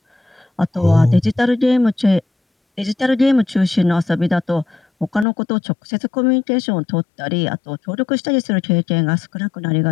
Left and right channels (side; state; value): right; drops out; at 5.2 s